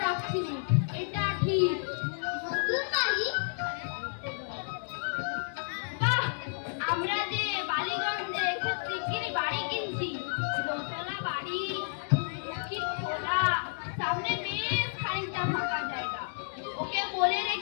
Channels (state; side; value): silent; right; digital silence